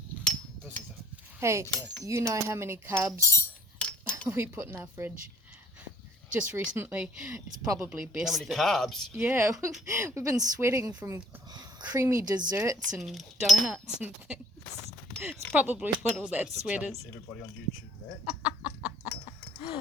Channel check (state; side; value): normal; both; correlation 0.57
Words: busy though. Hey, Okay. you know how many carbs we put in our fridge just recently? It's probably best. How many that- carbs? Yeah, we've been sweating from creamy desserts and donuts and things. It's probably what all that Supposed to sweat tell is. everybody on YouTube that.